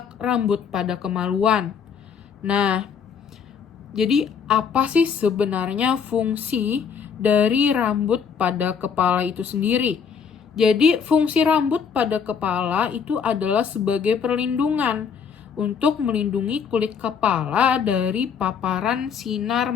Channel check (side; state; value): right; quieter; 6.7 dB